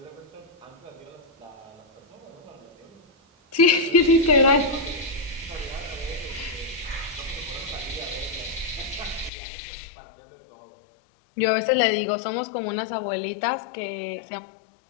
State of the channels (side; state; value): right; drops out; at 9.3 s